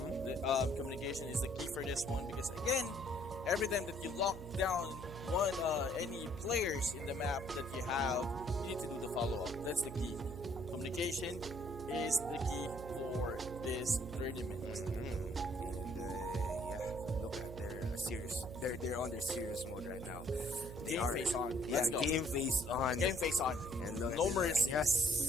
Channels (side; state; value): right; noise; hum, 11 dB below the sound